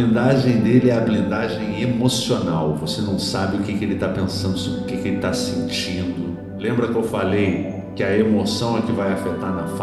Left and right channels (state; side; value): identical; both; correlation 1.00